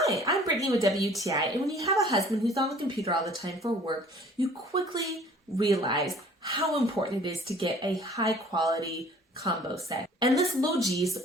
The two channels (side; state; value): both; normal; correlation 0.52